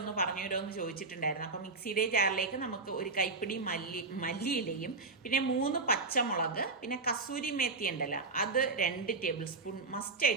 പറഞ്ഞു തരുമെന്ന് ചോദിച്ചിട്ടുണ്ടായിരുന്നു. അപ്പൊ മിക്സിയുടെ ജാറിലേക്ക് നമുക്ക് ഒരു കൈപ്പിടി മല്ലിയിലയും പിന്നെ 3 പച്ചമുളക് പിന്നെ കസൂരി മേത്തി ഉണ്ടല്ലോ അത് 2 ടേബിൾ സ്പൂൺ മസ്റ്റ്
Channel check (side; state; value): left; quieter; 3.9 dB